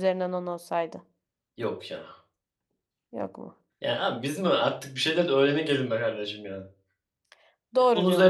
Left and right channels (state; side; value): identical; both; correlation 1.00